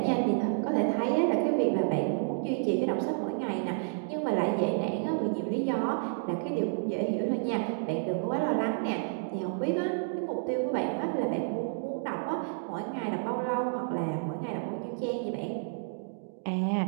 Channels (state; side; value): silent; left; digital silence